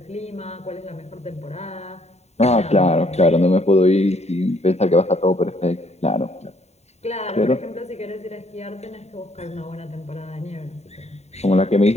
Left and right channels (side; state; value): right; late; 0.32 ms